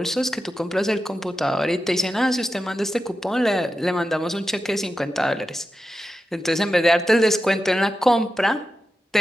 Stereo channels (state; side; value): normal; both; correlation 0.91